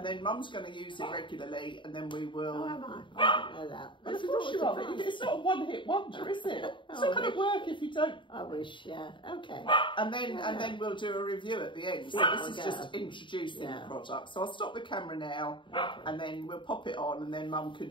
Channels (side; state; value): right; late; 0.24 ms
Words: then Mum's going to use it regularly, and then we will... Oh, am I? I didn't know that. Of course you are. It's not a one-hit wonder, is it? It's not going to work if you don't. I wish, yeah. Okay. And then we'll do a review at the end. So this is just introducing the product. So I'll stop the camera now, and then we'll pop it on, and then Mum can